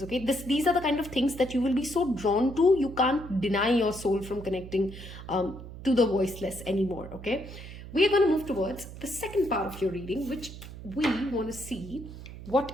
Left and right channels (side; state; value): right; noise; hum, 13 dB below the sound